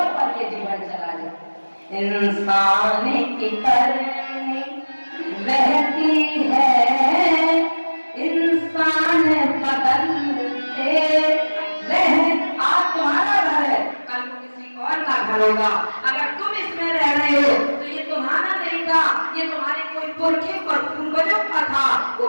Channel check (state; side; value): inverted; both; correlation -1.00